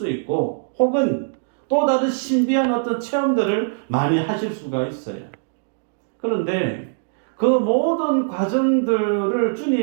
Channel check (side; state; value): left; silent; digital silence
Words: 있고 혹은 또 다른 신비한 어떤 체험들을 많이 하실 수가 있어요. 그런데 그 모든 과정들을